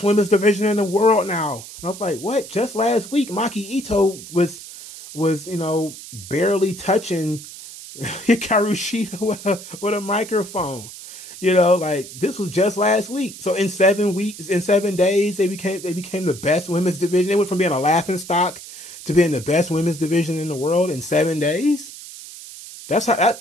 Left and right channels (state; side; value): noise; right; hiss, 14 dB below the sound